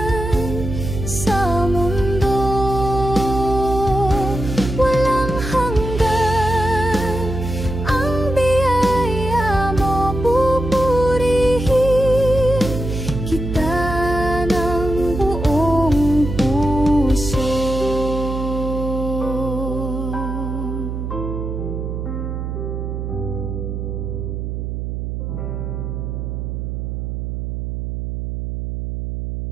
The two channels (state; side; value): noise; right; hum, 4 dB below the sound